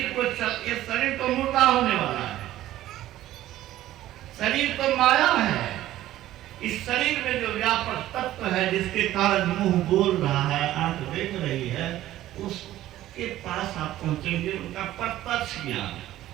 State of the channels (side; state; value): left; quieter; 14.2 dB